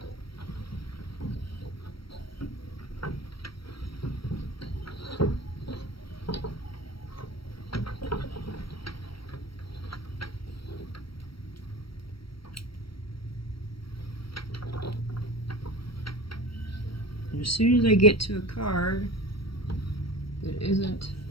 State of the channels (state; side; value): late; right; 0.75 ms